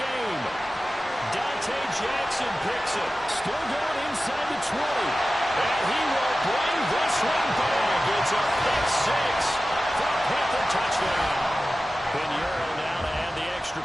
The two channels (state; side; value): normal; both; correlation 0.95